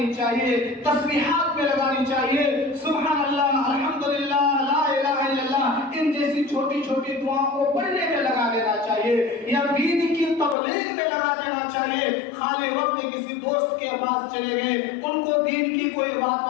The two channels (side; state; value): right; drops out; at 10.6 s